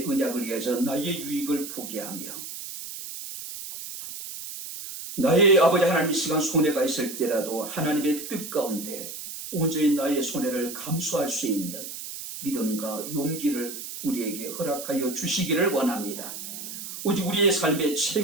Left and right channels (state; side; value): noise; right; hiss, 9 dB below the sound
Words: 언약을 위해서 나의 유익을 포기하며 나의 아버지 하나님 이 시간 손해가 있을 때라도 하나님의 뜻 가운데 온전히 나의 손해를 감수할 수 있는 믿음과 용기를 우리에게 허락하여 주시기를 원합니다. 오직 우리의 삶의